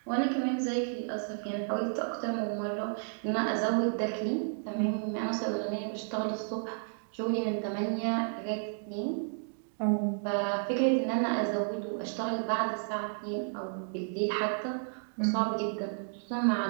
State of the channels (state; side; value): silent; left; digital silence